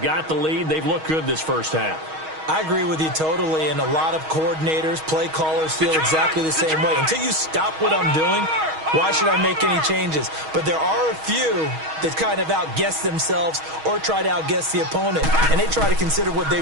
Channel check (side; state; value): left; late; 6.3 ms